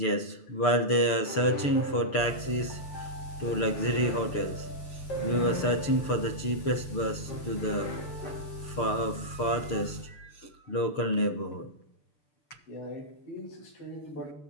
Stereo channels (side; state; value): right; late; 6.7 ms